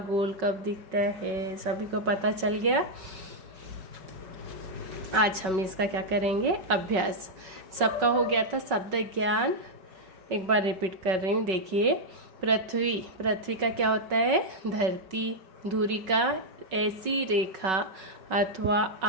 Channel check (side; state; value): left; late; 5.3 ms